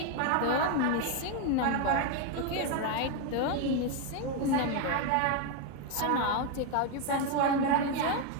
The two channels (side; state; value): both; different; correlation 0.02